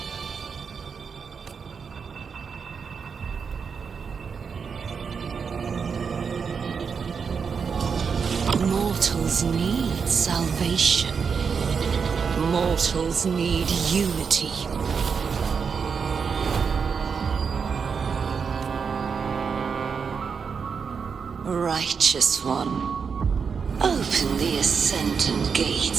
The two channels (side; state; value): left; quieter; 6.0 dB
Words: Mortals need salvation. Mortals need unity. Righteous One, open the Ascendant